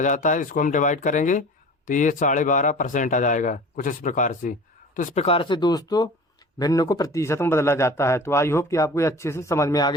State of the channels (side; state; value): both; normal; correlation 0.40